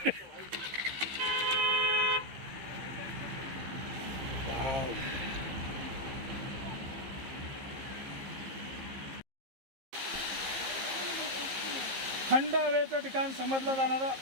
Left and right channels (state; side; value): late; left; 15 ms